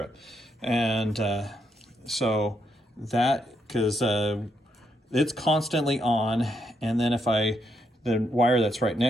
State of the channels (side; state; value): both; normal; correlation 0.78